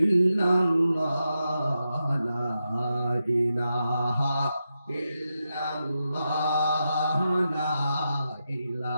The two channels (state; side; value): inverted; both; correlation -0.88